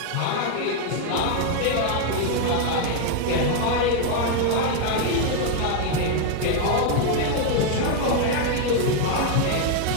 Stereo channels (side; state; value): both; different; correlation 0.01